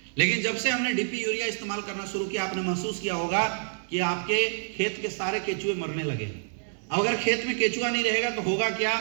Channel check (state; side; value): silent; left; digital silence